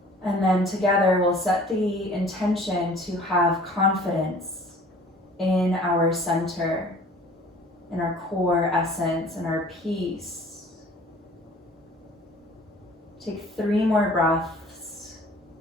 And then together we'll set the intention to have confidence in our center, in our core essence, in our peace. Take 3 more breaths,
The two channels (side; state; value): both; normal; correlation 0.49